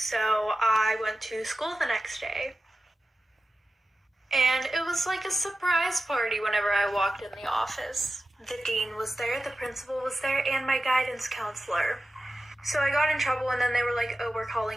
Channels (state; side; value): normal; both; correlation 0.93